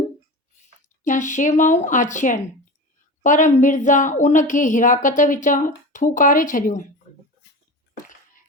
या शेवाऊं आछियाईं, पर मिर्ज़ा उन खे हिराकत विचां थूकारे छॾियो।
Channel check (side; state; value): both; normal; correlation 0.29